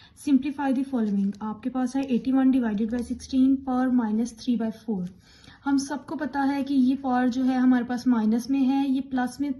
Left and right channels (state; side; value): identical; both; correlation 1.00